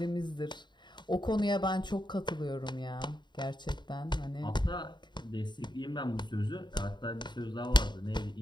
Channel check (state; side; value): late; right; 0.22 ms